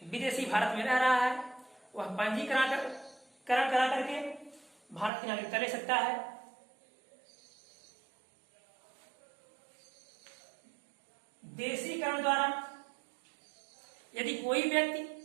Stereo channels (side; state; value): left; drops out; at 5.1 s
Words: विदेशी भारत में रह रहा है, वह पंजीकरण करा करके भारत की नागरिकता ले सकता है। देशीकरण द्वारा, यदि कोई व्यक्ति